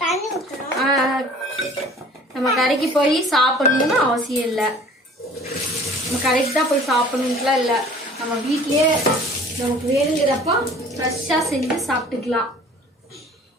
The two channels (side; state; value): both; normal; correlation 0.49